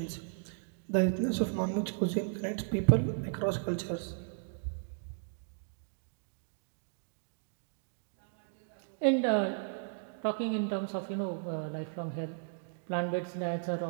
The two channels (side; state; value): left; silent; digital silence